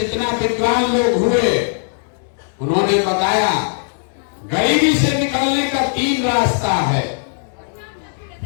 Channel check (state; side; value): silent; right; 60 dB below the other